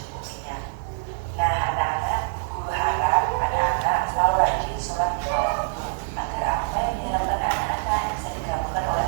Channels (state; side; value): silent; left; 62 dB below the other